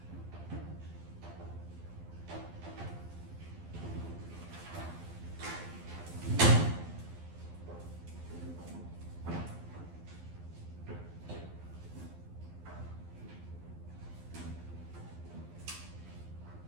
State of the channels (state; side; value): late; left; 12 ms